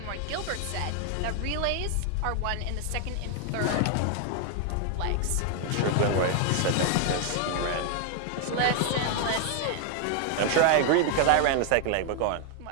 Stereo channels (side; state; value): both; different; correlation 0.00